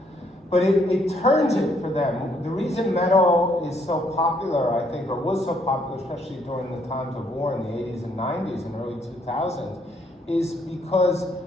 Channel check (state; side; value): normal; both; correlation 0.69